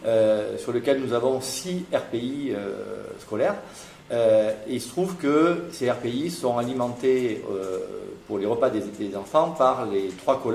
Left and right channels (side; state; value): both; identical; correlation 1.00